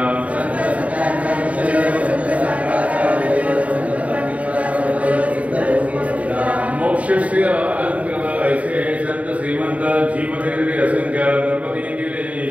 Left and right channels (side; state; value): left; late; 0.067 ms